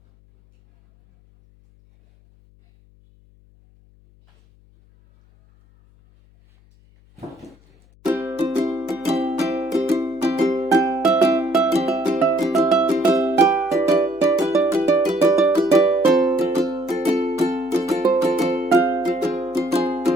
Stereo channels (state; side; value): noise; left; hum, 30 dB below the sound